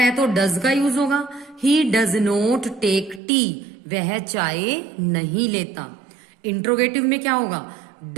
तो डज का यूज होगा। He does not take tea, वह चाय नहीं लेता। इंट्रोगेटिव में क्या होगा,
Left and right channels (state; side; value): drops out; left; at 3.2 s